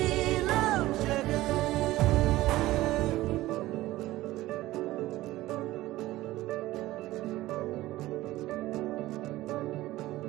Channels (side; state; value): left; quieter; 16.9 dB